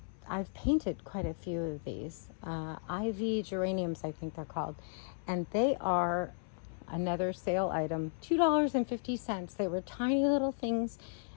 I've painted quite a few of these. Ivy geraniums, I think they're called. And they are another sale item, $2.50. They were tiny little things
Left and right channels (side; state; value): right; silent; 55 dB below the other